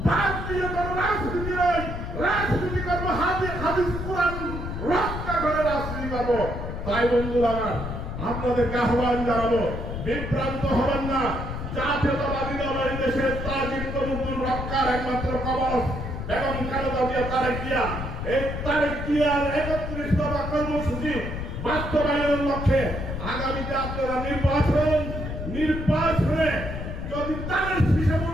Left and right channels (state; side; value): noise; left; rumble, 5 dB below the sound